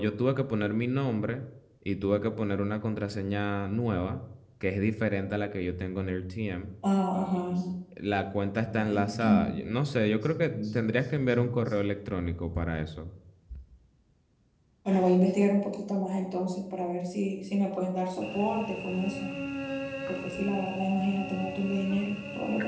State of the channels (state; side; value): identical; both; correlation 1.00